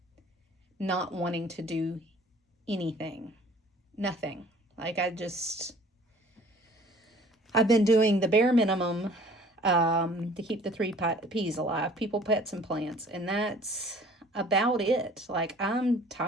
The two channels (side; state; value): both; normal; correlation 0.52